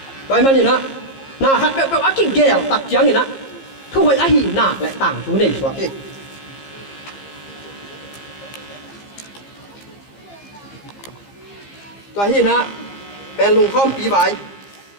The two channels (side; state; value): right; late; 15 ms